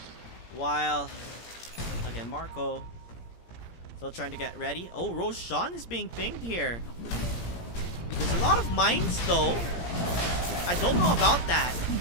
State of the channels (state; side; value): late; right; 17 ms